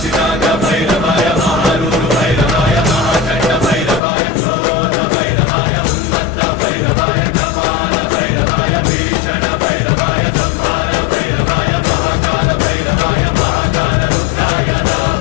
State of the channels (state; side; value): drops out; right; at 4.0 s